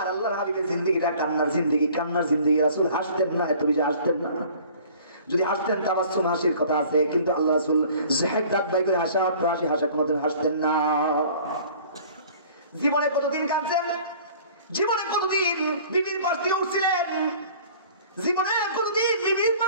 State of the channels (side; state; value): both; inverted; correlation -0.49